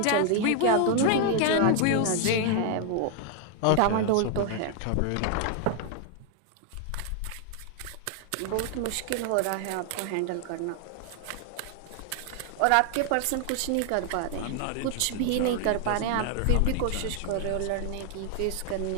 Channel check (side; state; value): both; different; correlation 0.00